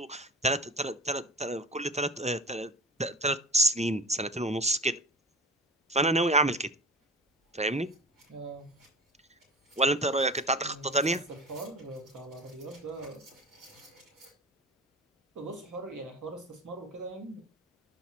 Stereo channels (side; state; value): both; normal; correlation 0.32